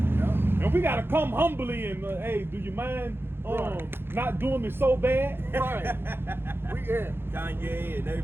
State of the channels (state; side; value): late; left; 0.11 ms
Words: Yep. and we gotta come humbly and hey, do you mind not doing me so bad? Right. Kanye and